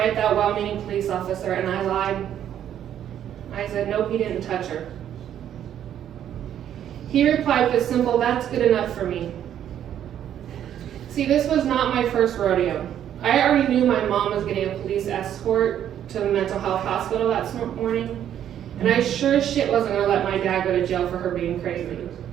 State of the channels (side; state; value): left; quieter; 10.3 dB